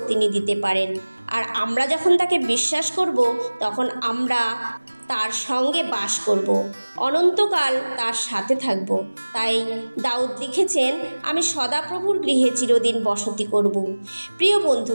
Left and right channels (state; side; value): inverted; both; correlation -1.00